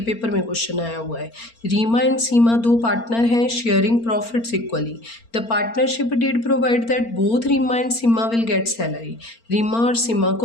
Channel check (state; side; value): late; right; 4.4 ms